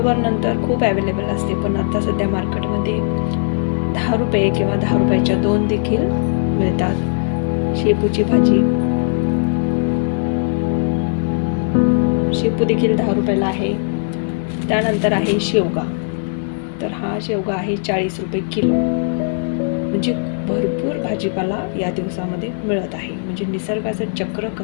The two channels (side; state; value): right; silent; 58 dB below the other